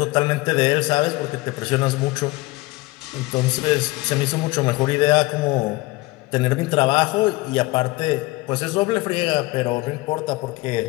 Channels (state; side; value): quieter; right; 21.5 dB